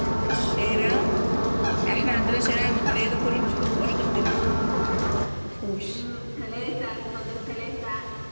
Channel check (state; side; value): inverted; both; correlation -1.00